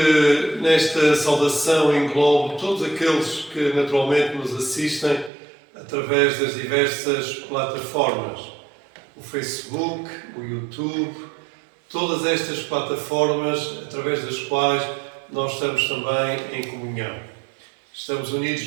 saudação englobo todos aqueles que naturalmente nos assistem através das diversas plataformas. O Facebook, o YouTube, todas estas plataformas através das quais nós estamos também em comunhão. Estamos unidos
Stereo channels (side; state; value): left; drops out; at 5.3 s